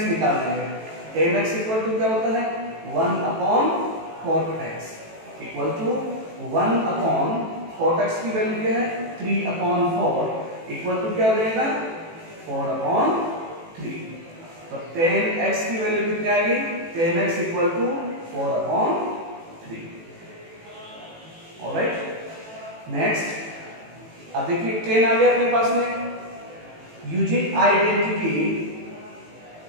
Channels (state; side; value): late; left; 18 ms